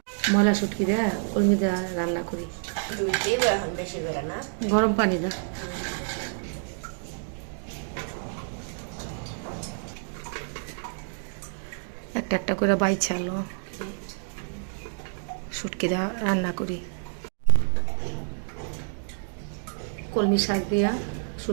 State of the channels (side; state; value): left; silent; 59 dB below the other